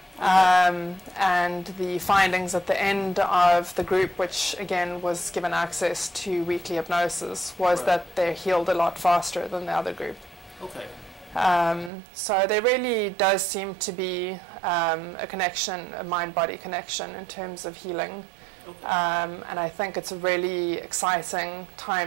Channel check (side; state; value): left; drops out; at 11.9 s